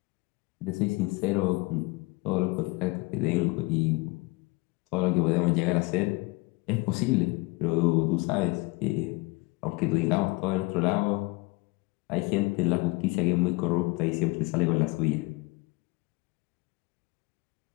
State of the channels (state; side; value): quieter; right; 24.8 dB